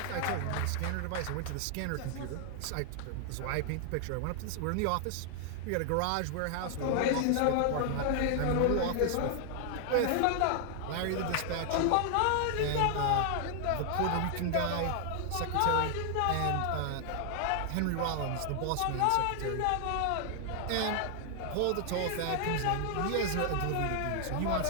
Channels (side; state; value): both; different; correlation 0.00